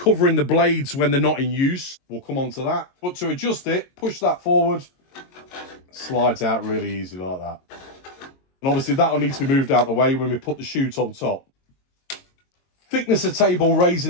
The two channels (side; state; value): right; late; 22 ms